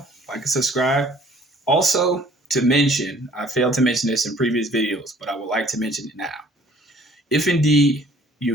like and subscribe. Also, to mention, I failed to mention this in previous videos, but I would like to mention it now. If indeed you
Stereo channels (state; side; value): normal; both; correlation 0.56